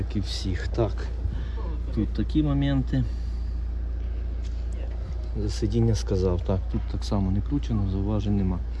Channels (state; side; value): identical; both; correlation 1.00